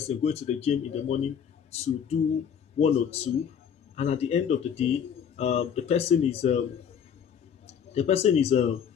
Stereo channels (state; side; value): quieter; right; 7.8 dB